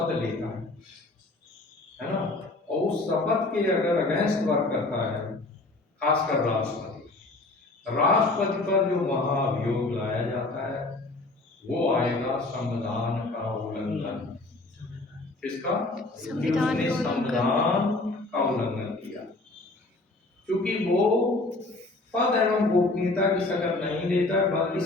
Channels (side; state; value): right; quieter; 3.0 dB